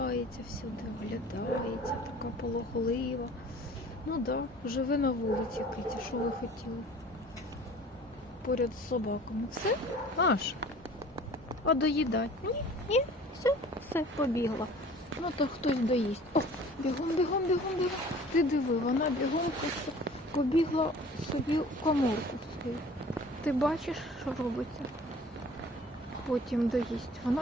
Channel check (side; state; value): both; normal; correlation 0.47